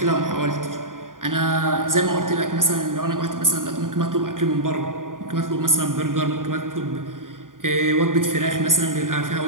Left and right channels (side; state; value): left; late; 0.89 ms